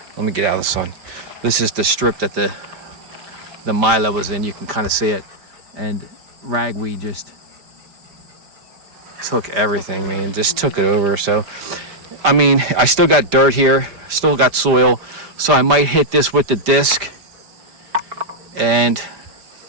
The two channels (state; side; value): late; left; 5.1 ms